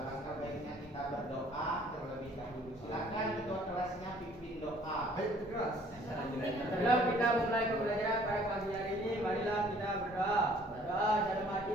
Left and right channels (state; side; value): normal; both; correlation 0.57